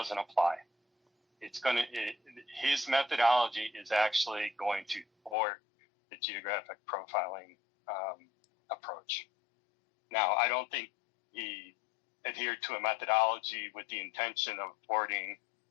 apply. His methodology is actually going to thwart the geographic profiling approach. Now, I don't think he adhered to a methodology with the intention of thwarting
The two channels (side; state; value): right; drops out; at 5.4 s